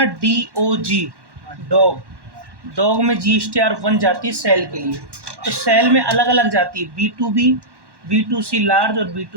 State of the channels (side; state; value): left; late; 1.1 ms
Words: DOG, डॉग, डॉग में GSTR 1 जाती है सेल के लिए, तो सेल में अलग अलग जाती है, B2B, B2C लार्ज और